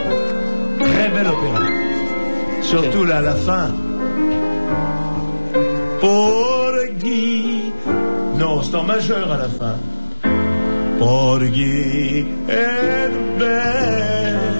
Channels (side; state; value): both; inverted; correlation -1.00